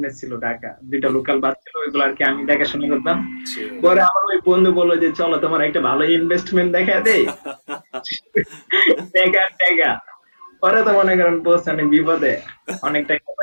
ছিল, ঢাকা দুইটা হুম, লোকাল বাস ছিল, ওইগুলো আর কি আমি দেখাশোনা করতাম। ছিল। পরে আমার ওই বন্ধু বললো যে চলো তোমার একটা ভালো ইনভেস্টমেন্ট দেখা দেই, টাকা টাকা। পরে তো মনে করেন পোস্ট অনেক বিপদে, অনেক টাকা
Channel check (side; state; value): both; inverted; correlation -1.00